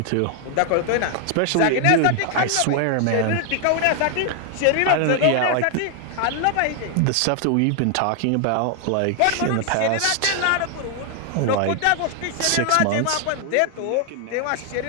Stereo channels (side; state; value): both; different; correlation 0.00